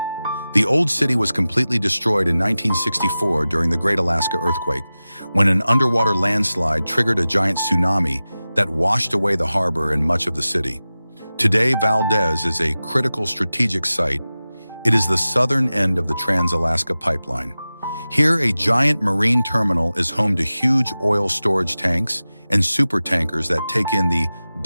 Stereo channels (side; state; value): both; inverted; correlation -0.96